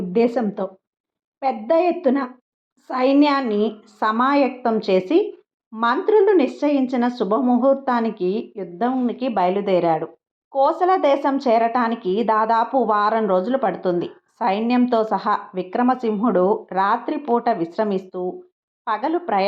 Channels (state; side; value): identical; both; correlation 1.00